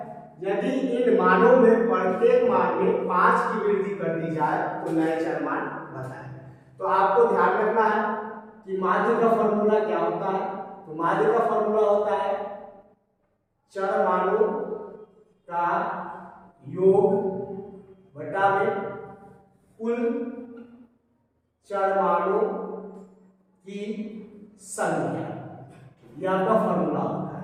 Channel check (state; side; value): identical; both; correlation 1.00